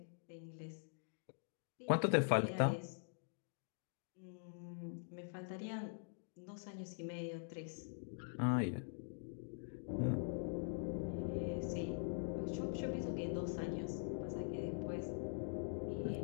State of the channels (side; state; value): right; silent; digital silence